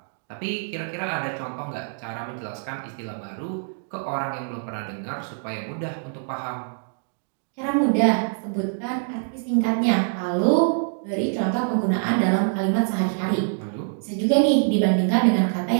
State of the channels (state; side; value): silent; left; digital silence